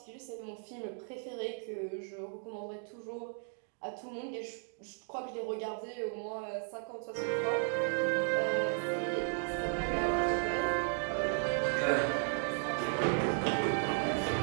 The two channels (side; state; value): left; silent; 54 dB below the other